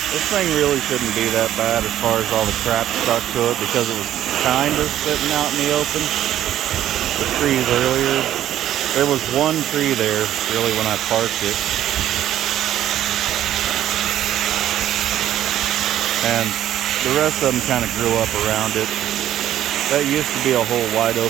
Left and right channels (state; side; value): quieter; left; 11.9 dB